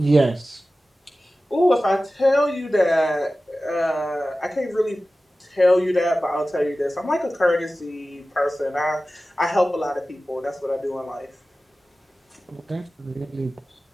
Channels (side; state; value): both; normal; correlation 0.96